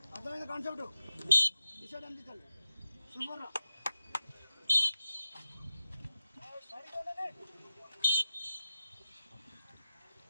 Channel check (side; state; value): both; inverted; correlation -0.92